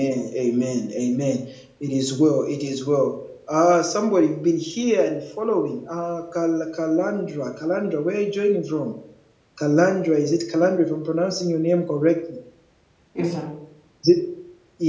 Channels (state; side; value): identical; both; correlation 1.00